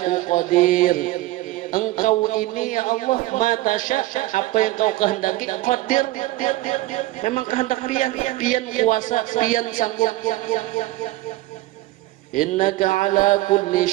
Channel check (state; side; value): quieter; left; 17.6 dB